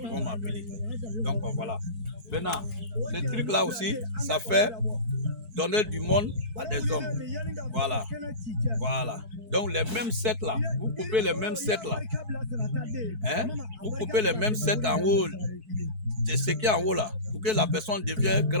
vont m'appeler. Donc voilà. Maintenant, ce truc-là aussi, ça fait donner du monde à des hommes. Voilà. Voilà. Donc les mêmes sets là, vous coupez les mêmes sets là. Hein? Vous coupez les mêmes sets en haut. C'est ce qui est en haut là, pour que la personne devienne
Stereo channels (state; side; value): late; left; 4.6 ms